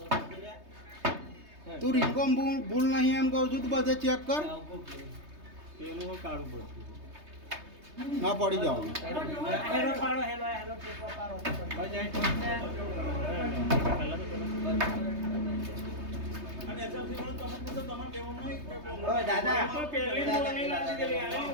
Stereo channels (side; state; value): left; late; 3.2 ms